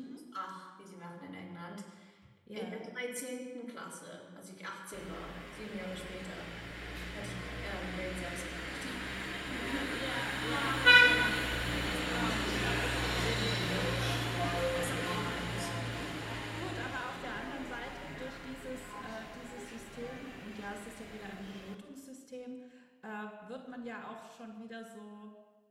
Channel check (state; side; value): identical; both; correlation 1.00